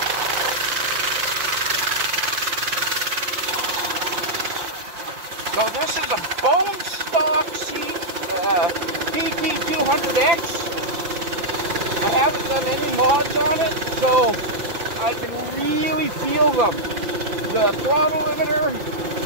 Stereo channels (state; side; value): late; left; 5.9 ms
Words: So this is a bone stock BT200X. I haven't done any mods on it, so I can really feel them. The throttle limiter